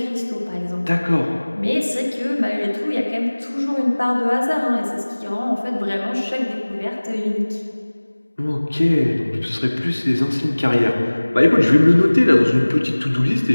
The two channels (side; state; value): both; inverted; correlation -1.00